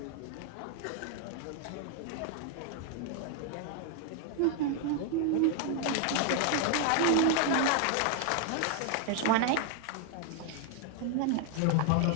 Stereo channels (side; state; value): both; different; correlation 0.00